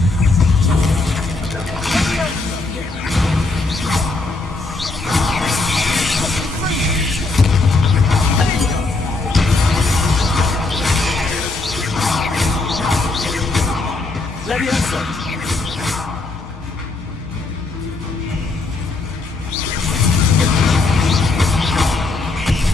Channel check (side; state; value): right; quieter; 3.5 dB